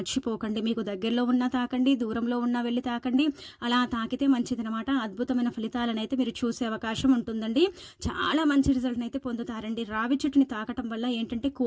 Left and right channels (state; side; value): identical; both; correlation 1.00